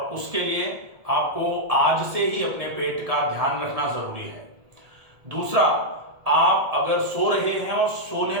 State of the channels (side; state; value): left; late; 1.7 ms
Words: उसके लिए आपको आज से ही अपने पेट का ध्यान रखना जरूरी है। दूसरा, आप अगर सो रहे हैं और सोने